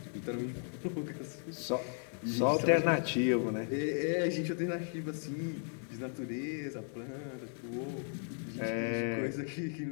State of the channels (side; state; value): right; silent; 54 dB below the other